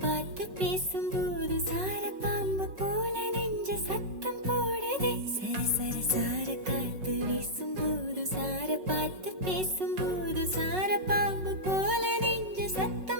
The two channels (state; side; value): late; left; 5.3 ms